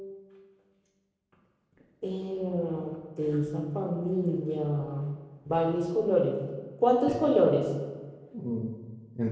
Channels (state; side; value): identical; both; correlation 1.00